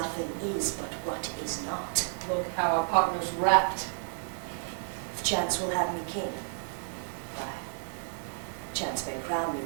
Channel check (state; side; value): silent; left; digital silence